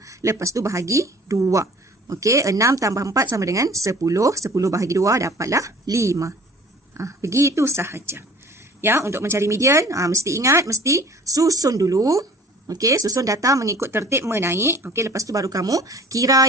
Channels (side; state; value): both; normal; correlation 0.48